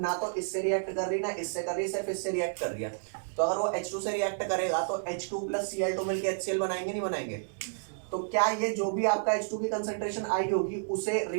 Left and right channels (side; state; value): left; silent; digital silence